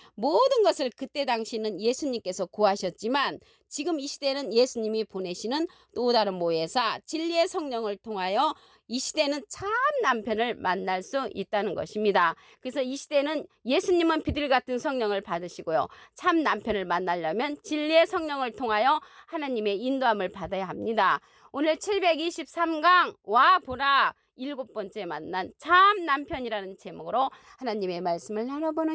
모든 것을 그때 당시는 예수님께서 구하셨지만 지금 이 시대는 예수님이 보내시는 또 다른 보혜사 진리의 성령을 통하여 이 시대는 참 남편을 만날 수 있다는 것입니다. 그래서 이 시대는 예수님은 비둘기 같은 성령을 받으시고요. 참 남편을 만나려면 진리의 성령을 통하여 하나님의 인도함을 받아야 합니다. 오늘 723강 와 보라 7번째 만난 참 남편이라는 제목으로 하나님의 말씀을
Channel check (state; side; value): identical; both; correlation 1.00